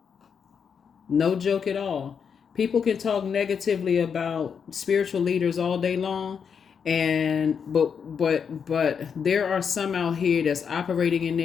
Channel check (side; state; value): right; quieter; 6.8 dB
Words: No joke at all. People can talk negatively about spiritual leaders all day long, but there are some out here that's operating in